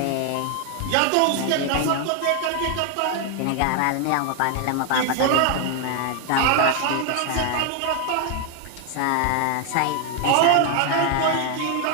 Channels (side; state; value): both; different; correlation 0.01